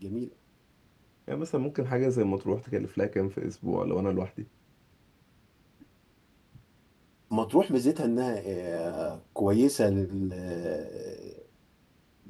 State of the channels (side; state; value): both; identical; correlation 1.00